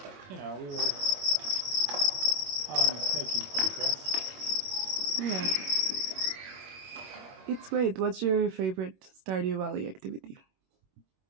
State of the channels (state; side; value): late; left; 21 ms